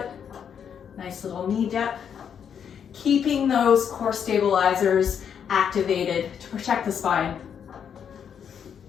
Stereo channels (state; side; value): quieter; right; 7.9 dB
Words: Nice little knee dip. Keeping those core stabilizers activated to protect the spine.